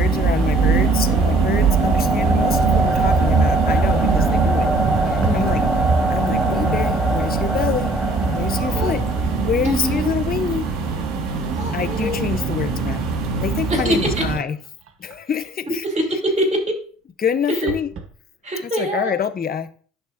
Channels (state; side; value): normal; both; correlation 0.56